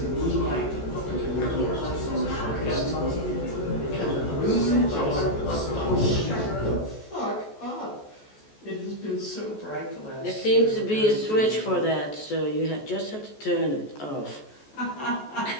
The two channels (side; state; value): right; late; 14 ms